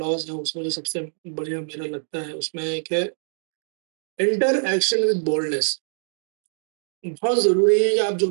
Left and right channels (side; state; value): left; silent; digital silence